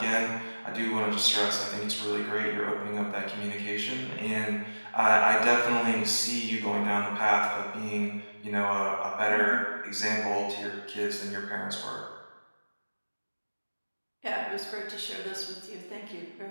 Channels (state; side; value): inverted; both; correlation -1.00